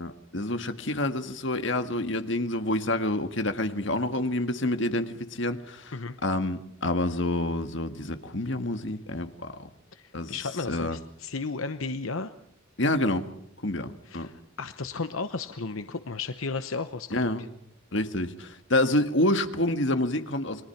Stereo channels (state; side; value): normal; both; correlation 0.23